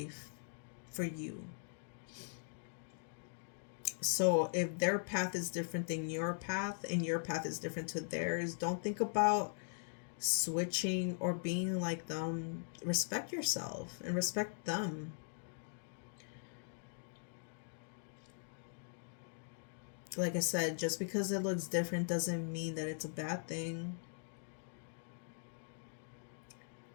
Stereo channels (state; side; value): silent; right; digital silence